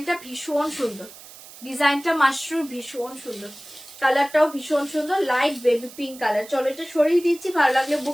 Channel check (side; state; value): right; noise; hiss, 18 dB below the sound